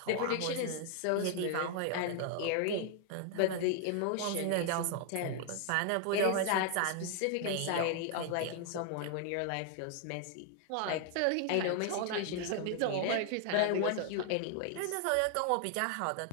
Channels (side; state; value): both; different; correlation 0.00